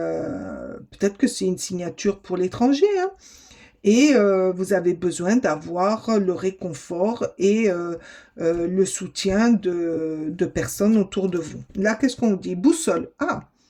peut-être que c'est une signature pour l'étranger, hein, et vous avez besoin d'avoir le réconfort et le soutien de personnes autour de vous. Là, qu'est-ce qu'on dit? Boussole. Ah,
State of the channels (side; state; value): both; identical; correlation 1.00